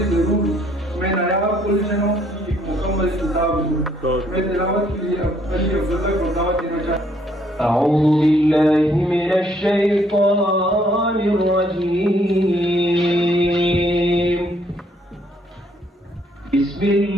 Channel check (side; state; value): both; normal; correlation 0.67